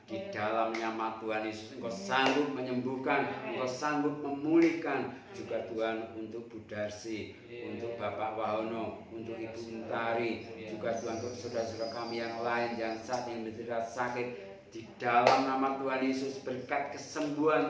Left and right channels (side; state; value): both; identical; correlation 1.00